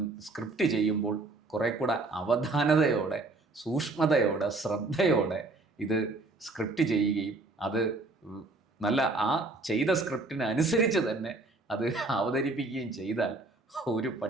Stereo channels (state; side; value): quieter; left; 3.2 dB